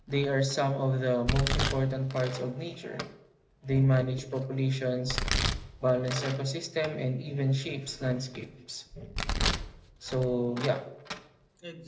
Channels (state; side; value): identical; both; correlation 1.00